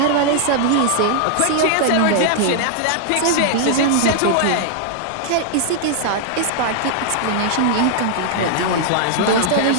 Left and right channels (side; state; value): both; different; correlation -0.01